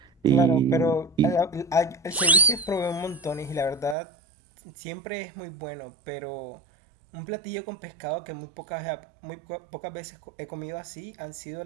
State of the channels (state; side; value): drops out; left; at 4.0 s